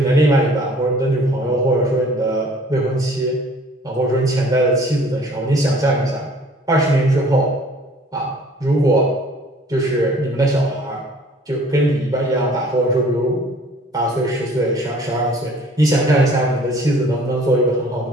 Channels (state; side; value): normal; both; correlation 0.53